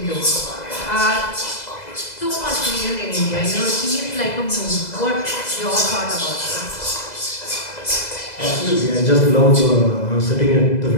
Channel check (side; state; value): right; late; 2.0 ms